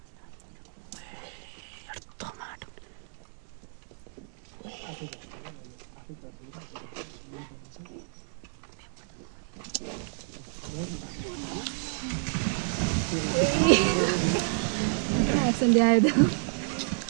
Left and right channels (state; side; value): silent; left; digital silence